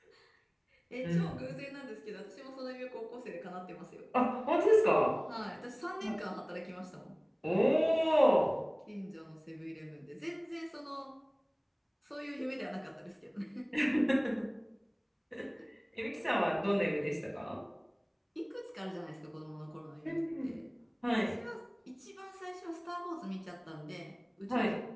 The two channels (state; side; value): identical; both; correlation 1.00